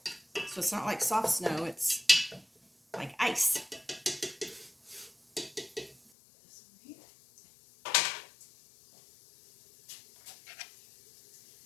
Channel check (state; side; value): drops out; right; at 6.1 s